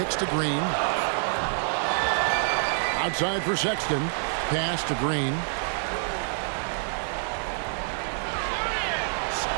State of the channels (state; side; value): silent; left; digital silence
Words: to Green. Outside for Sexton. Pass to Green.